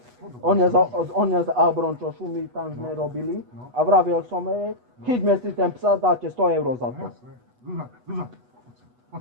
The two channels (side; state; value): left; late; 8.2 ms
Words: on je z Abrončošu, my tam sme robili a vravil som jej, chyťme si ten psa, dáte 100 eur za to. Jasné. Zúza, Zúza, poď